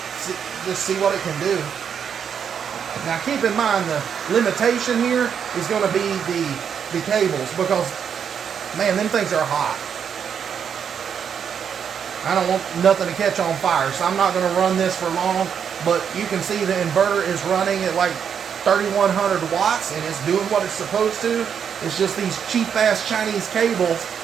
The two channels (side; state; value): left; quieter; 7.6 dB